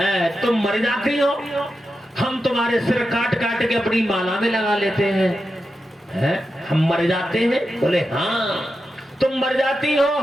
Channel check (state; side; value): normal; both; correlation 0.90